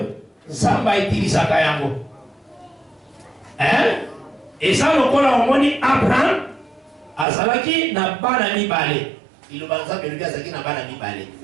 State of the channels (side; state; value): left; drops out; at 7.2 s